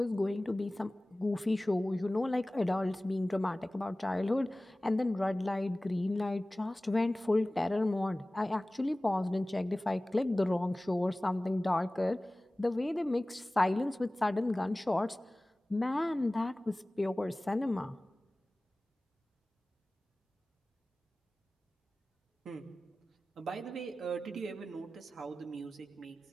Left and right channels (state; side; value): normal; both; correlation 0.98